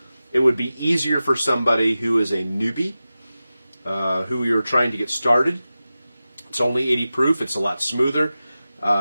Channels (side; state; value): both; inverted; correlation -0.94